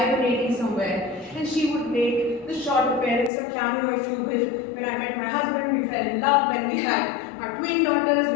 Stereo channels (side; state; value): right; drops out; at 3.3 s